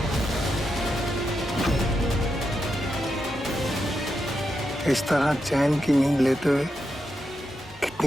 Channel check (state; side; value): normal; both; correlation 0.85